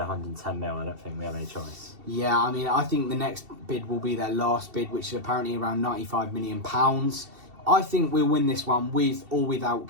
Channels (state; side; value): late; left; 2.7 ms